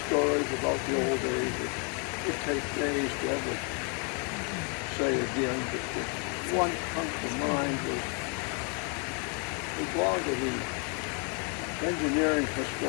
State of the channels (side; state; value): right; quieter; 37.8 dB